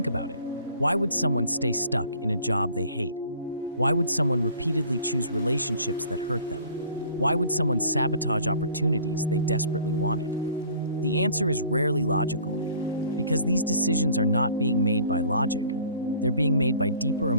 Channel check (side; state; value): both; inverted; correlation -0.51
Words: about it. Why would someone stay stuck in a job they hate? Why would someone repeatedly choose relationships that hurt them? Why would someone sabotage opportunities they desperately wanted? The answer is rarely logical, because these decisions are not being made by logic. They're being made by deeper